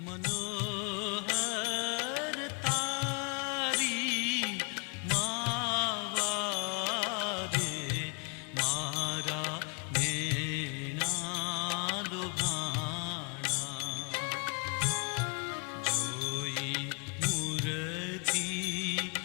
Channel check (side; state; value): right; quieter; 35.7 dB